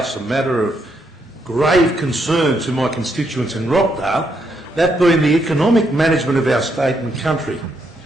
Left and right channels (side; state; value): both; normal; correlation 0.77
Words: a matter of grave concern to my constituents in Rockdale, that being the economic management of our state and country.